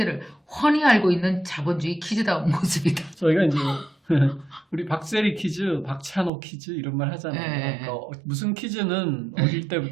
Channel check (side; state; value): left; drops out; at 6.3 s